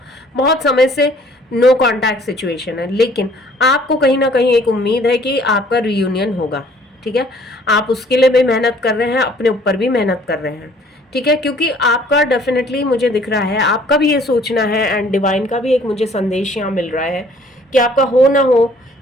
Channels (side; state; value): both; normal; correlation 0.57